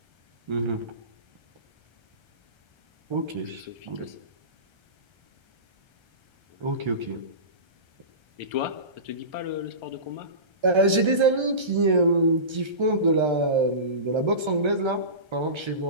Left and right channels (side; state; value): left; late; 1.3 ms